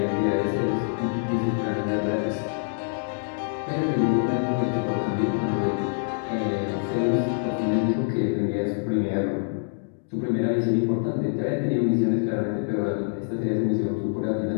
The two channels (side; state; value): right; silent; digital silence